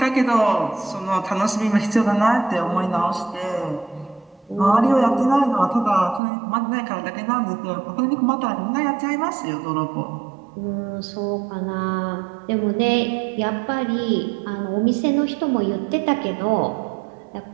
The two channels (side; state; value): left; drops out; at 6.2 s